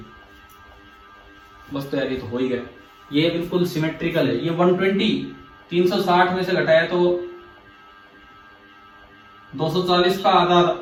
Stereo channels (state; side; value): identical; both; correlation 1.00